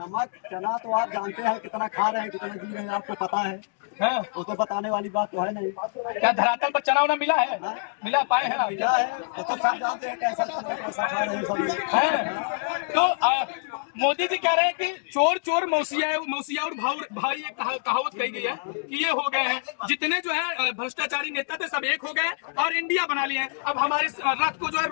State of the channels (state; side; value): silent; right; digital silence